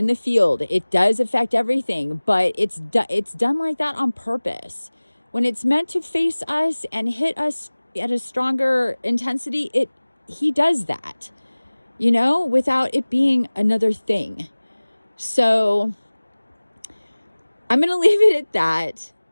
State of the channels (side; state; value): both; inverted; correlation -1.00